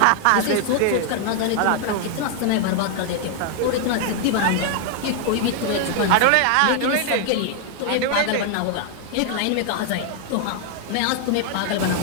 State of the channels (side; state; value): both; different; correlation 0.00